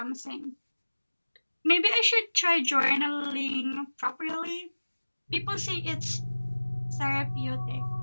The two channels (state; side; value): inverted; both; correlation -1.00